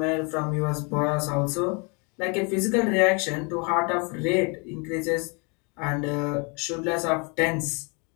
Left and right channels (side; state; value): right; quieter; 33.0 dB